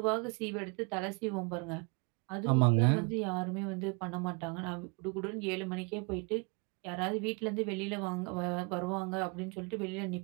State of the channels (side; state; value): left; quieter; 33.5 dB